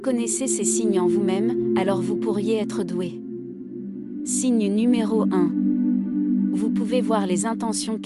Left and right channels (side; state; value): both; identical; correlation 1.00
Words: ces signes en vous-même, alors vous pourriez être doué. Signe numéro 1. Vous pouvez voir les intentions